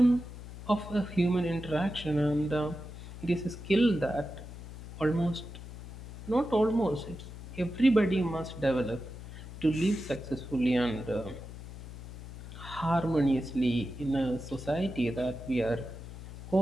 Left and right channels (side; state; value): left; noise; hum, 12 dB below the sound